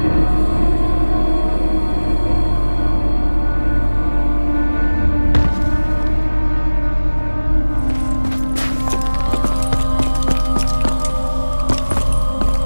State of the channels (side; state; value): both; inverted; correlation -1.00